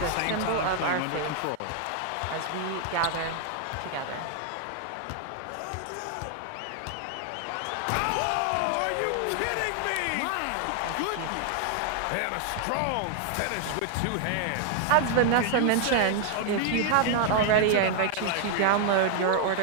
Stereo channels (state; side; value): different; both; correlation 0.00